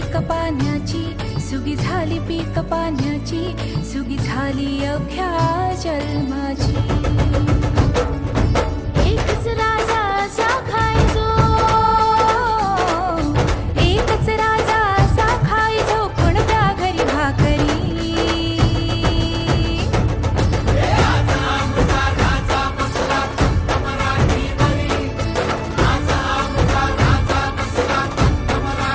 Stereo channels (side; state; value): both; identical; correlation 1.00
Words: पाण्याची सुगी झाली पीक पाण्याची सुगी झाली अवघ्या जन्माची एकच राजा असा खायचो एकच राजा असा खायचो कोणत्या घरी भाकरी